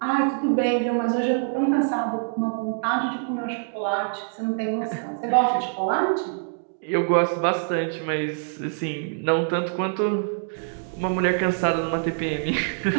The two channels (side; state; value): left; silent; digital silence